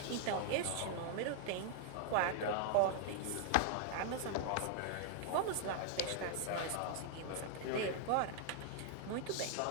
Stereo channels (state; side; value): different; both; correlation 0.00